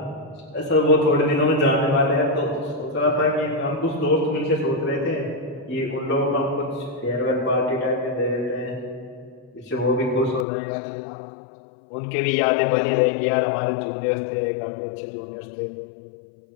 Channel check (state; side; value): drops out; right; at 10.5 s